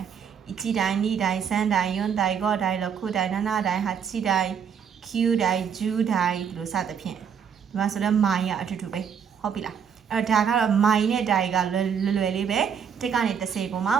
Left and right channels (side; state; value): left; quieter; 7.5 dB